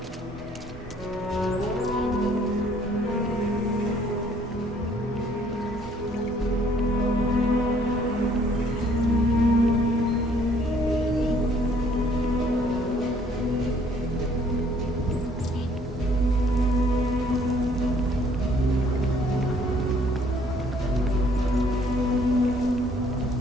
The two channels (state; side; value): normal; both; correlation 0.61